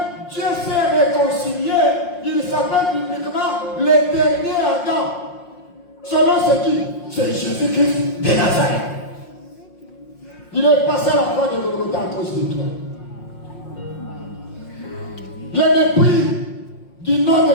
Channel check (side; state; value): right; late; 5.6 ms